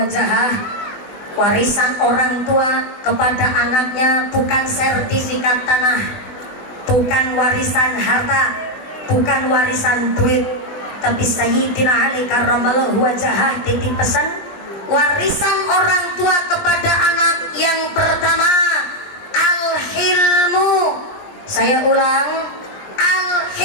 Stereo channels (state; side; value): late; right; 20 ms